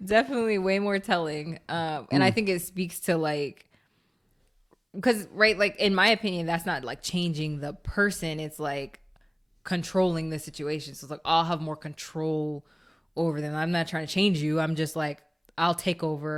definitely way more telling. And I think it speaks to like, because, right, like in my opinion, that's not like changing the person. It's like controlling the situation. So it's like, I'll have more control over them. I'm not trying to change you. I'm just like, I'll take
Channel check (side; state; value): both; identical; correlation 1.00